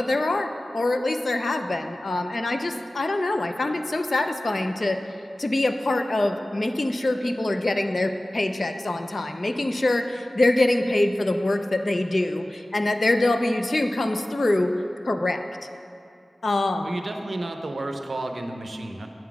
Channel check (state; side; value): normal; both; correlation 0.97